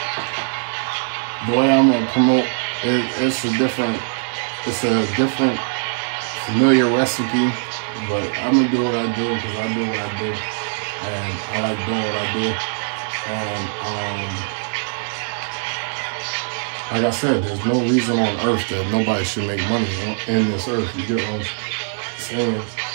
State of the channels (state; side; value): silent; left; 59 dB below the other